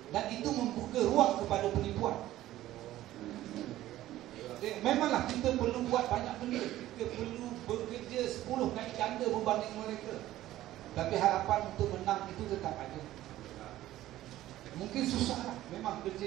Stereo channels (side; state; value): left; quieter; 14.6 dB